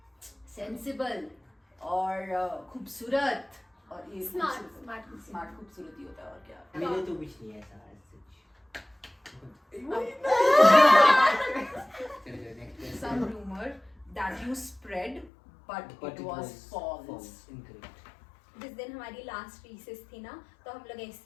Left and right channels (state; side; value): drops out; right; at 15.3 s